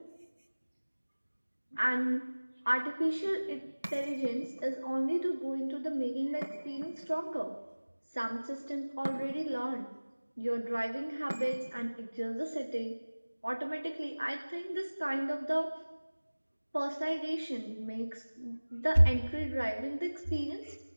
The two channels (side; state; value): both; inverted; correlation -1.00